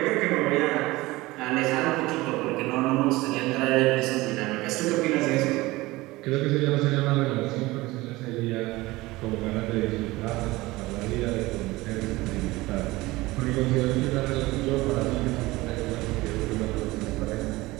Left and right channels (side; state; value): left; quieter; 20.1 dB